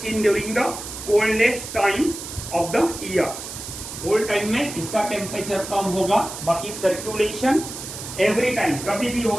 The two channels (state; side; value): noise; right; hiss, 10 dB below the sound